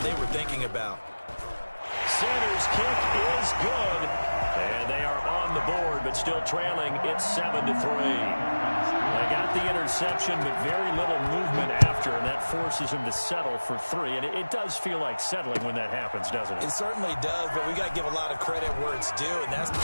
were thinking about. Sanders' kick is good. And they are on the board, but still trailing. It's 7-3. They got the interception, but very little movement after, and that forces him to settle for 3. And it does feel like settling when that happens, doesn't it? It certainly does, but we got to give a lot of credit where it's due, and that's...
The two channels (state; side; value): inverted; both; correlation -1.00